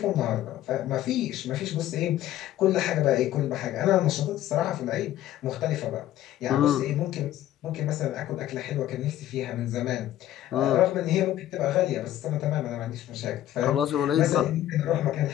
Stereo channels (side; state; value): right; quieter; 13.0 dB